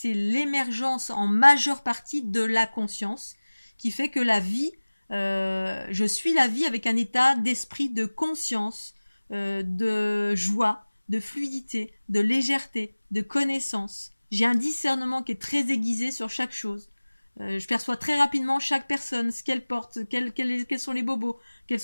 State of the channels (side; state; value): both; inverted; correlation -1.00